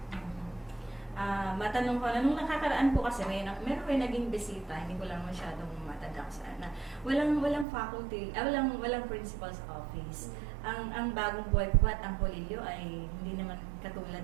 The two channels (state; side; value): drops out; left; at 7.7 s